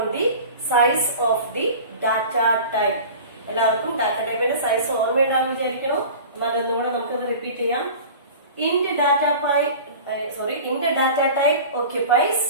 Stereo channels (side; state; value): both; inverted; correlation -0.38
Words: the size of the data type. എല്ലാവർക്കും ഡാറ്റ ടൈപ്പിന്റെ സൈസ് ഓർമ്മയുണ്ടാവും വിചാരിക്കണം. എന്നാലൊന്നും കൂടെ നമുക്കത് റിപ്പീറ്റ് ചെയ്യാം. Int data type occupies